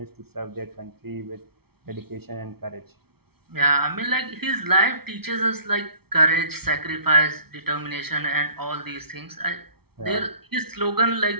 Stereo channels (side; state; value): left; late; 0.95 ms